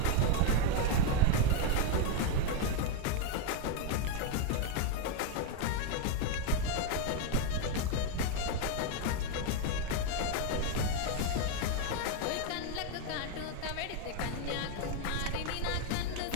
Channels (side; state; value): both; different; correlation 0.01